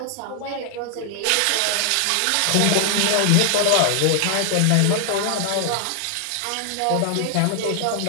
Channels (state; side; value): different; both; correlation 0.00